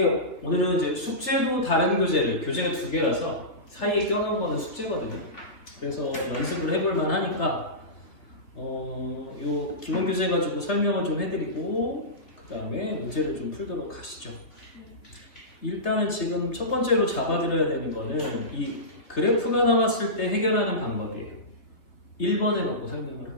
오늘은 이제 숙제도 다른 교재가 두 개라서 사이에 껴놓은 거는 숙제거든요. 그래서 연습을 해볼 만하니까 요 기본 교재 가지고 설명을 좀 해드리고 그 다음에 문제를 좀 풀도록 하시죠. 일단은 지금 첫 번째로 잡아드려야 되는 거는 이 그래프가 나왔을 때 해결하는 방법이에요. 1번을 갖고 설명을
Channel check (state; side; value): late; right; 3.5 ms